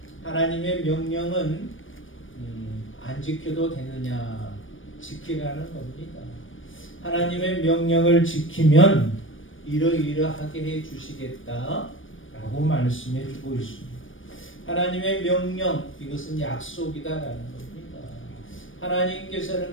하나님의 명령은 안 지켜도 되느냐? 지키라는 겁니다. 하나님의 명령을 지키면 이러이러하게 해 주시겠다 라고 말씀해 주고 있습니다. 하나님의 명령, 이것은 약속이다라는 겁니다.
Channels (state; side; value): late; right; 0.57 ms